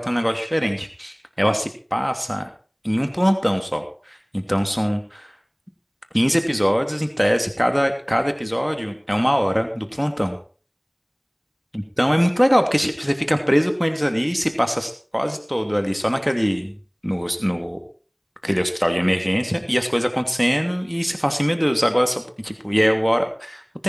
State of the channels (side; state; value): both; identical; correlation 1.00